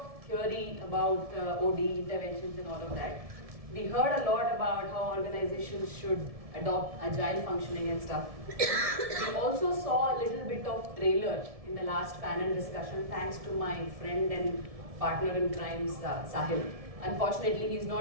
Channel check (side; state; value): left; late; 1.7 ms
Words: theory about OD interventions and all of that. We heard a lot about how organizations should adopt agile functioning and stuff. We also saw a little bit of trailer in the last panel discussion thanks to my friend and partner in crime, Sahil. Unfortunately, he's